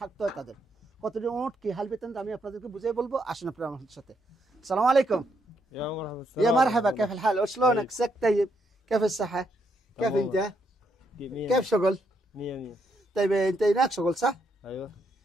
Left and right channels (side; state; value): both; normal; correlation 0.76